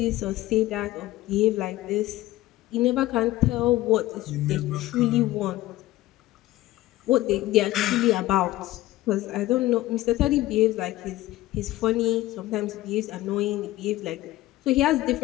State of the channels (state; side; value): quieter; right; 16.7 dB